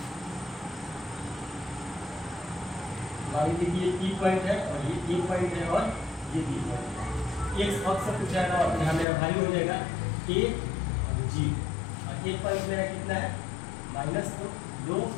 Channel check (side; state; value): right; drops out; at 9.1 s